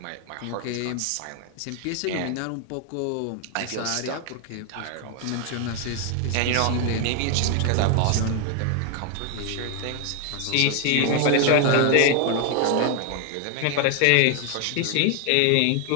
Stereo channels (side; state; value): both; different; correlation 0.01